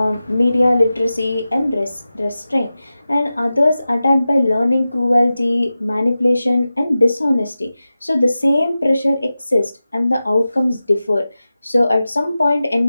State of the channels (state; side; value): inverted; both; correlation -0.94